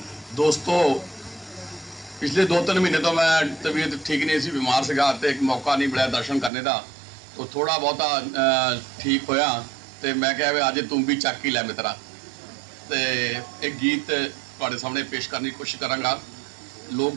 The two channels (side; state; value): left; drops out; at 6.5 s